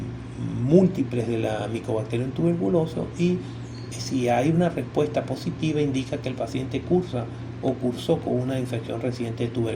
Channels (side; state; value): both; identical; correlation 1.00